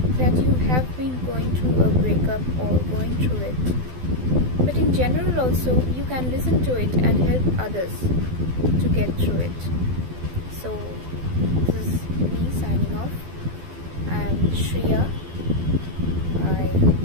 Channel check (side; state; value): left; late; 12 ms